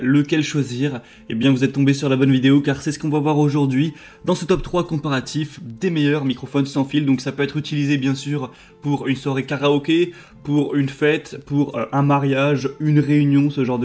lequel choisir. Eh bien, vous êtes tombé sur la bonne vidéo, car c'est ce qu'on va voir aujourd'hui dans ce top 3 comparatif des meilleurs microphones sans fil. Donc ça peut être utilisé bien sûr pour une soirée karaoké, pour une fête, pour un mariage, une réunion, ce genre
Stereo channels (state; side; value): identical; both; correlation 1.00